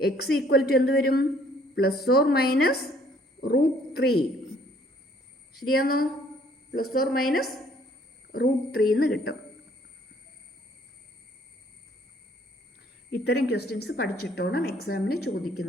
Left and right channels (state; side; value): normal; both; correlation 0.61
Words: x ഈക്വൽ ടു എന്ത് വരും? +or- √3. ശരിയാണോ? +or- √3 എന്ന് കിട്ടും. ഇത്തരം ക്വസ്റ്റ്യൻസ് പഠിച്ചിട്ടോണം എക്സാമിന്